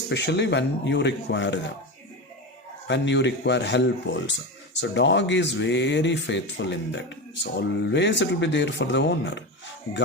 when you require them, when you require help also. So dog is very faithful in that. So always it will be there for the owner.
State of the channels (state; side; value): normal; both; correlation 0.21